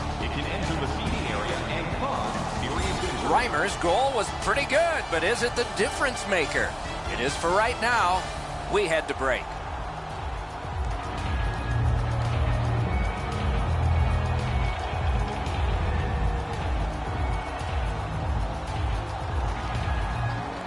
It can enter the seating area and cause serious injury. Reimer's goal was pretty good, but is it the difference maker? It is for right now. We head to break.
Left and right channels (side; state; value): both; identical; correlation 1.00